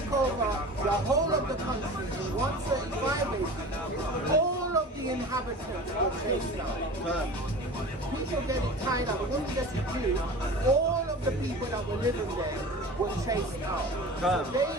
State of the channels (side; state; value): both; normal; correlation 0.36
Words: over the whole of the country in 135 AD, all of the inhabitants were chased out. People getting tied up, when we get to Jews, all of the people that were living there were chased out. So they